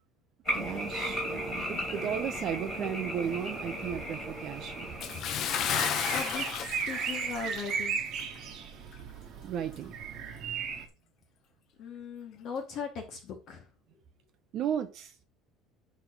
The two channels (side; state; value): both; normal; correlation 0.51